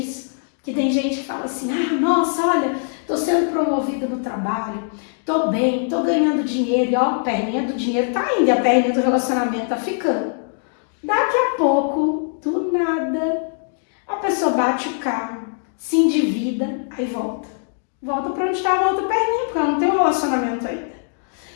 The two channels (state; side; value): silent; right; 65 dB below the other